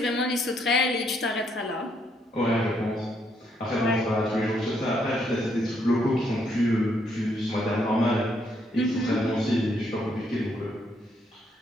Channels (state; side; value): normal; both; correlation 0.73